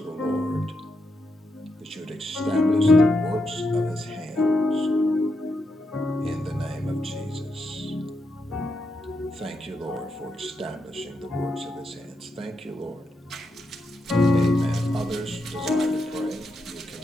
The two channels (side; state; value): both; normal; correlation 0.83